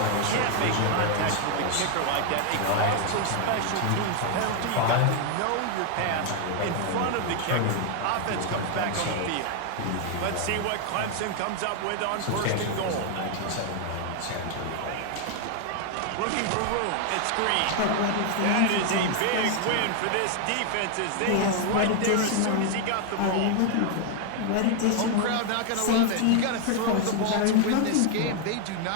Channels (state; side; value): different; both; correlation 0.00